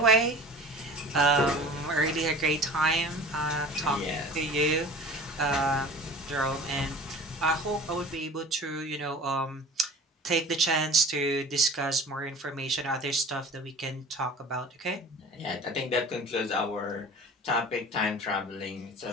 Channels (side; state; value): both; normal; correlation 0.41